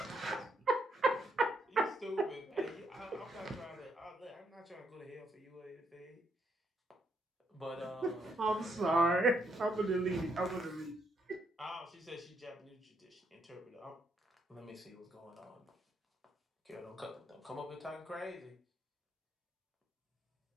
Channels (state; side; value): normal; both; correlation 0.75